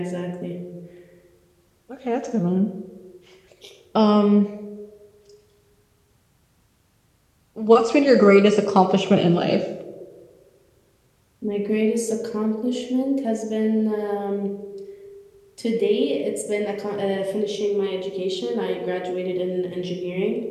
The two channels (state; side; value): identical; both; correlation 1.00